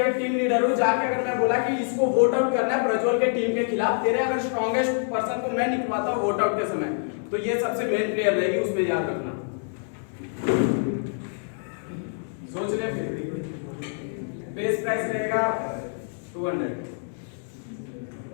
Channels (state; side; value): silent; right; digital silence